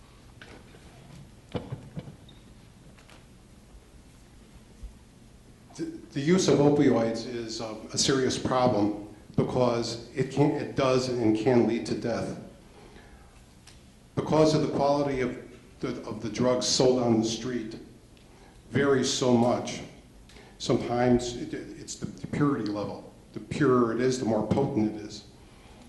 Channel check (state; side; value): identical; both; correlation 1.00